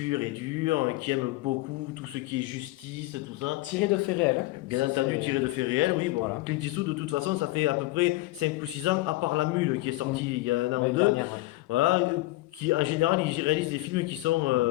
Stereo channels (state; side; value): quieter; right; 18.8 dB